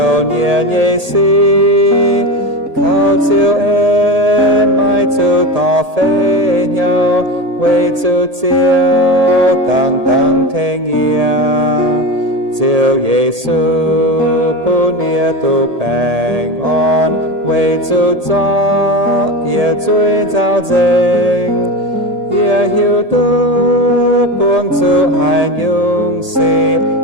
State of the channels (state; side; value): late; left; 1.8 ms